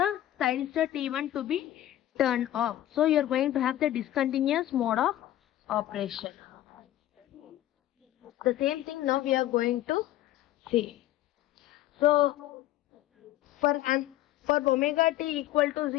thyristor T1 to be turned off. So you are going to have the discontinuous mode of operation. The same thing now we are going to see. So for omega t equal to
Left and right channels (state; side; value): quieter; right; 13.7 dB